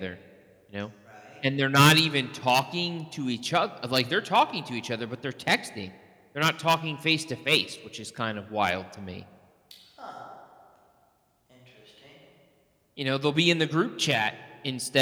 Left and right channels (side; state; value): both; identical; correlation 1.00